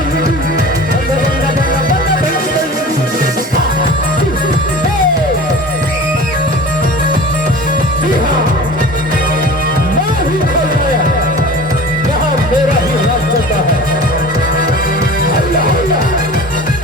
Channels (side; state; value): both; normal; correlation 0.39